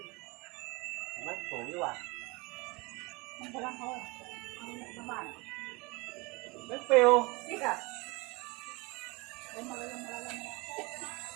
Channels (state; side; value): quieter; left; 26.0 dB